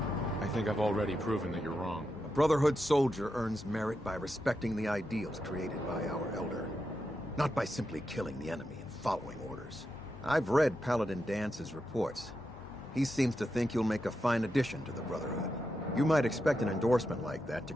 I think I've already proven that you're wrong. A Brotherhood soldier earns merit by respecting the ideals created by our Elder. Not by simply killing the enemy and following orders. I've read Paladin Dance's reports. He seems to think you'll make a fine addition to the Brotherhood. You might expect an endorsement like that to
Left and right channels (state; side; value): normal; both; correlation 0.86